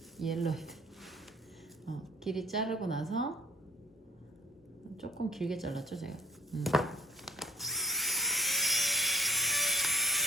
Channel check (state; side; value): normal; both; correlation 0.56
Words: 옐로이드. 길이 자르고 나서 조금 길게 잘랐죠 제가.